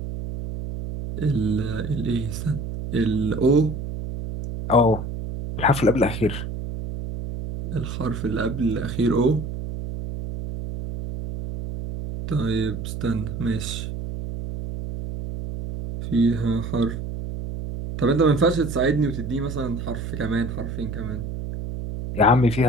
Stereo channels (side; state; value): right; noise; hum, 6 dB below the sound